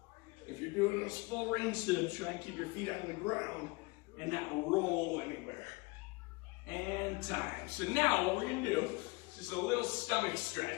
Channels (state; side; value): quieter; right; 25.7 dB